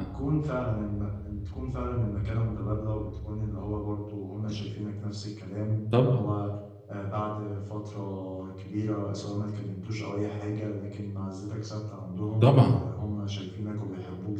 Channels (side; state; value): both; identical; correlation 1.00